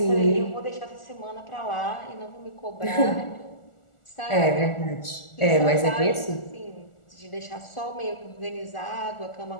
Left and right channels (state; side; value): late; right; 1.4 ms